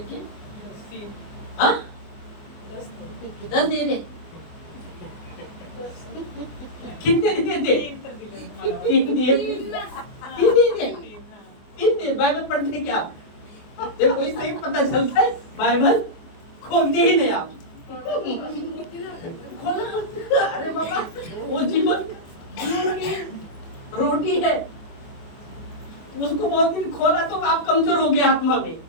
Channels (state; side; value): late; right; 24 ms